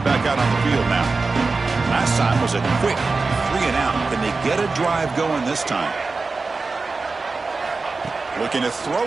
out on the field now. Last time was a quick 3 and out. Can they get a drive going this time? Looking to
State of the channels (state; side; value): quieter; left; 4.0 dB